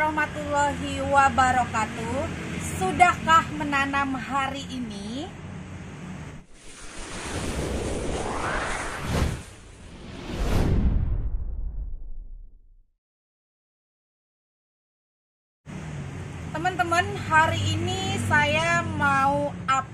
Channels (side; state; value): both; identical; correlation 1.00